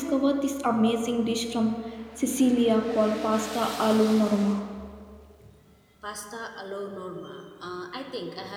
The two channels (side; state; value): both; identical; correlation 1.00